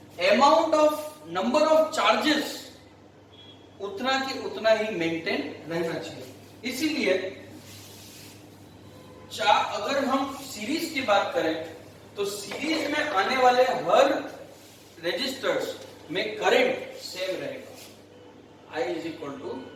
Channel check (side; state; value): both; identical; correlation 1.00